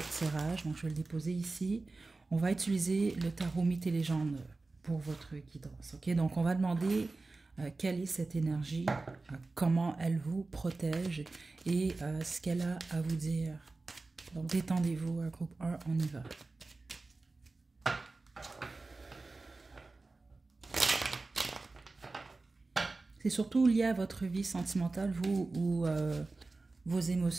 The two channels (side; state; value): left; quieter; 3.5 dB